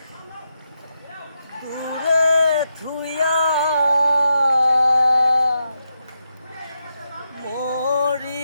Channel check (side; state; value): both; inverted; correlation -0.85